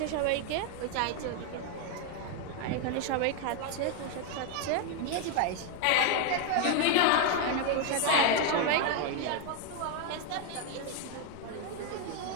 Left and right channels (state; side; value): different; both; correlation 0.01